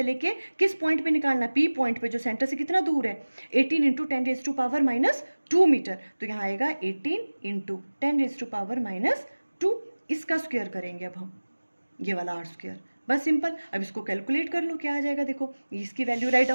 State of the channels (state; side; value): inverted; both; correlation -1.00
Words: लेके किस पॉइंट पे निकालना है, पी पॉइंट पे, जो सेंटर से कितना दूर है 18 into 10 raise to power -2 metre, तो यहाँ आएगा 18 इंटू 10 रेज टू पावर -2, इसका स्क्वायर करेंगे अब हम, ये वाला आर स्क्वायर, बस सिंपल। अब इसको कैलकुलेट कर लो क्या आ जाएगा, देखो इसकी वैल्यू राइट